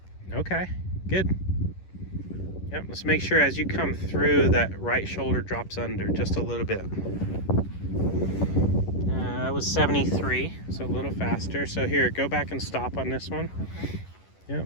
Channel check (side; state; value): right; late; 11 ms